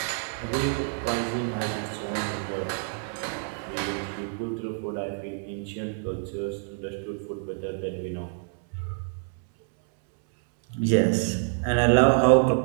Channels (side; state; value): left; silent; 60 dB below the other